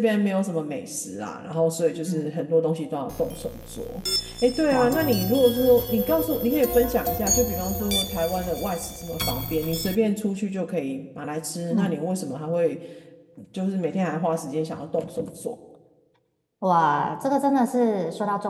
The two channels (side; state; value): both; identical; correlation 1.00